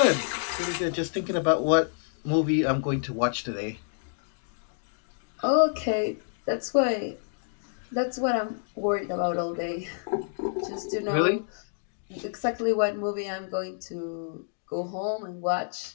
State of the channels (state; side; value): silent; right; digital silence